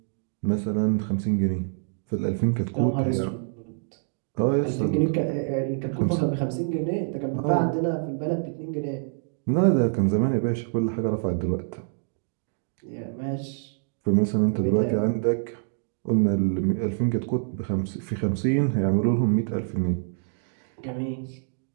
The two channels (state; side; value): silent; left; digital silence